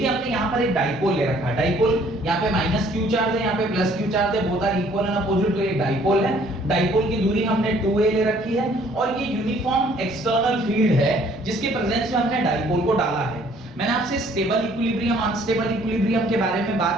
हमने यहाँ पर एक डाइपोल ले रखा है, डाइपोल यहाँ पे माइनस क्यू चार्ज है, यहाँ पे प्लस क्यू चार्ज है, both are equal and opposite, तो ये डाइपोल है। डाइपोल की दूरी हमने 2a ले रखी है और ये यूनिफॉर्म एक्सटर्नल फील्ड है जिसके प्रेजेंस में हमने डाइपोल को डाला है। मैंने आपसे स्टेबल इक्विलिब्रियम, अनस्टेबल इक्विलिब्रियम के बारे में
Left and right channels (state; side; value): normal; both; correlation 0.60